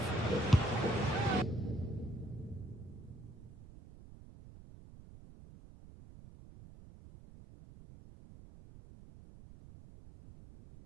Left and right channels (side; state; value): right; noise; rumble, 18 dB below the sound